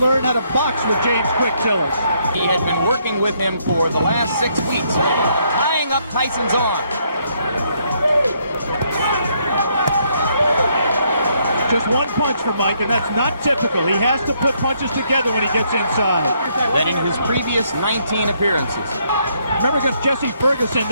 learn how to box with James Quick Tillis. He had been working with him for the last 6 weeks, tying up Tyson's arm. Just one punch for Mike, and that's not typical. He has to put punches together when he gets inside. That in his previous 19 appearances. Remember against Jesse Ferguson,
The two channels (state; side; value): inverted; both; correlation -0.72